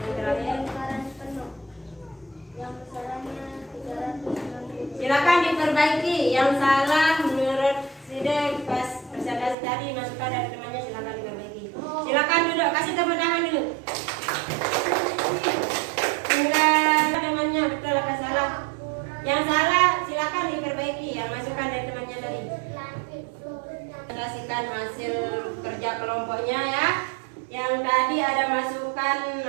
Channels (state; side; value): drops out; left; at 9.6 s